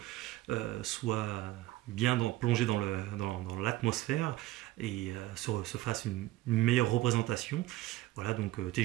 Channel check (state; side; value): quieter; left; 16.6 dB